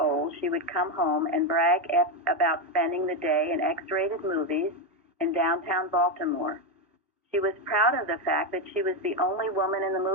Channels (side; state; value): both; normal; correlation 0.09